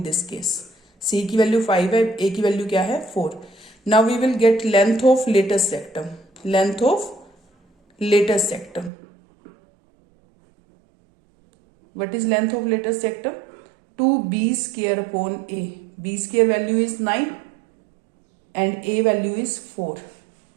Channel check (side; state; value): left; drops out; at 8.9 s